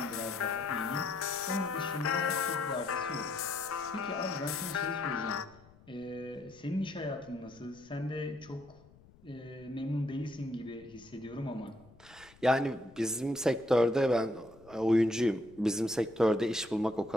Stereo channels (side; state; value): left; noise; rumble, 25 dB below the sound